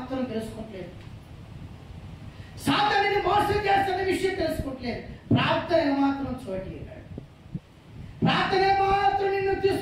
తెలుసుకోవట్లేదు. సాతానుని మోసం చేస్తున్న విషయం తెలుసుకోవట్లేదు. ప్రార్థన మాత్రం చోటిగాడు. ప్రార్థన మాత్రం నిన్ను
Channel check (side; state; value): both; identical; correlation 1.00